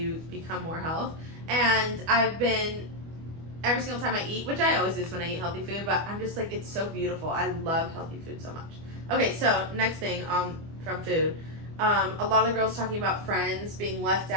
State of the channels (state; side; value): late; left; 25 ms